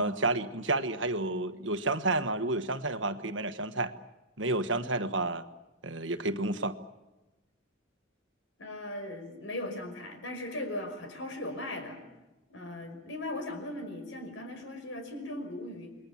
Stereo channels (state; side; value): normal; both; correlation -0.20